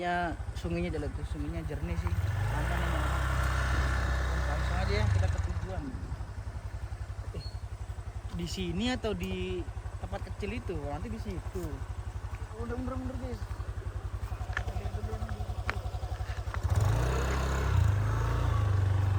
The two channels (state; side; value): identical; both; correlation 1.00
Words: sungainya jernih sih. Aman ini. Langsung aja ya kita ke tujuan. Di sini atau di tempat kecil itu? Nanti di situ. Udah mundur guys.